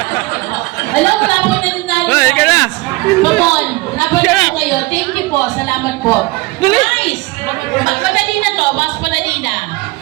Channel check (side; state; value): left; quieter; 22.5 dB